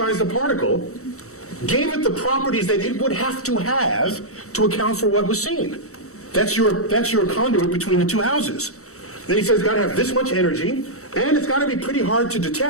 the particle, gave it the properties that it would have to account for what was seen. That's your conduit between the two houses. Then he says it's got to have this much energy, and it's got to be pretty hard to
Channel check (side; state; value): right; late; 0.64 ms